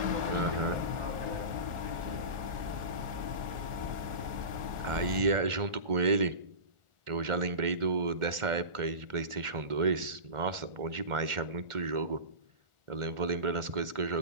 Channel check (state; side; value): late; left; 1.4 ms